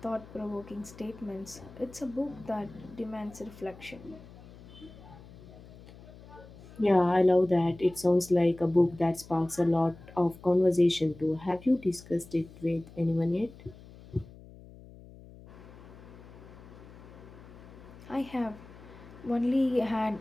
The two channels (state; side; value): noise; left; hum, 19 dB below the sound